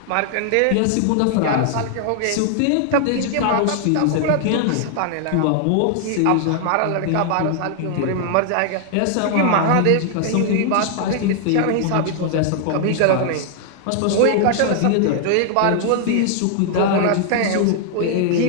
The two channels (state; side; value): different; both; correlation 0.00